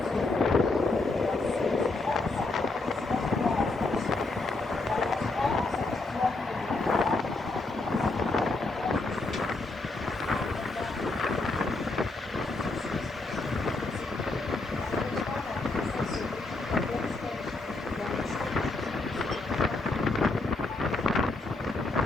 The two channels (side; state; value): right; quieter; 3.3 dB